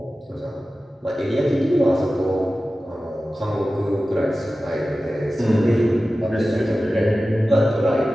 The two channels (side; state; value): both; normal; correlation 0.95